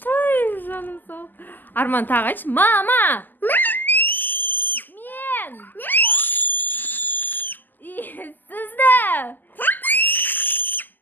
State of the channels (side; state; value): right; late; 0.088 ms